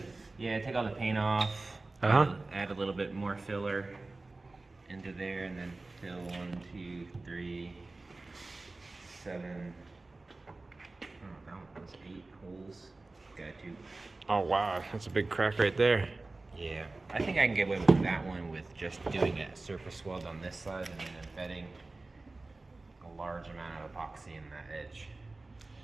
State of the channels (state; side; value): quieter; left; 3.2 dB